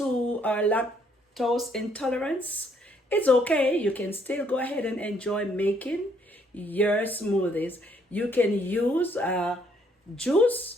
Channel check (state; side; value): normal; both; correlation 0.68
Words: are lactose intolerant, it's okay. You can still go ahead and enjoy making your smoothies. You can use